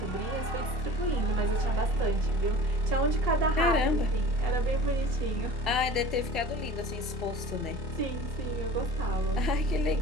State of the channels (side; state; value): left; late; 2.7 ms